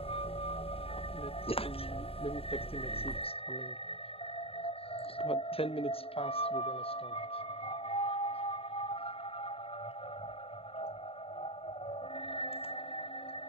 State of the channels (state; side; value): late; right; 0.27 ms